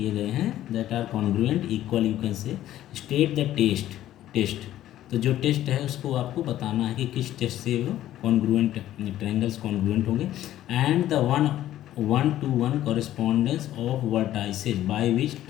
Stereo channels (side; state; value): right; quieter; 13.1 dB